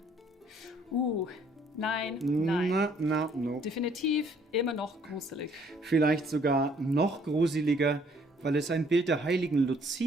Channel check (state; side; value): normal; both; correlation 0.63